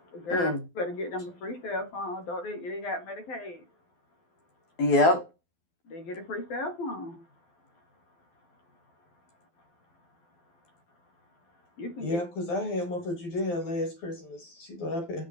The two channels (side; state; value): right; late; 12 ms